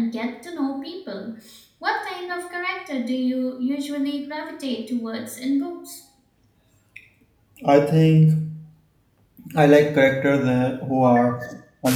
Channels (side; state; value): both; identical; correlation 1.00